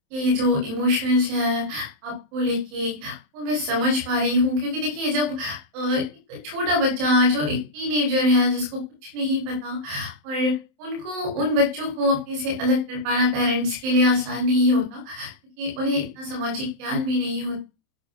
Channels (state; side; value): late; left; 27 ms